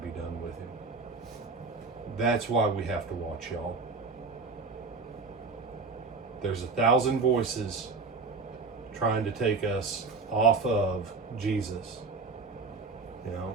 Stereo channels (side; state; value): left; quieter; 4.2 dB